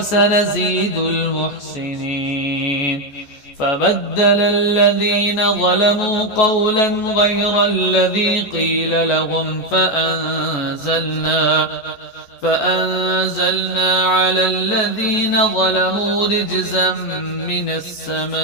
المحسنين فبدل الذين ظلموا قولا غير الذي قيل لهم فأنزلنا على الذين ظلموا رجزا من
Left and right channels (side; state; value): right; late; 14 ms